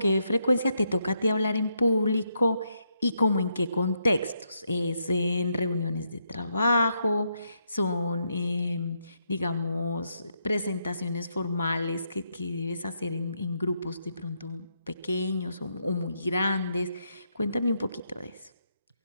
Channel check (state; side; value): inverted; both; correlation -0.79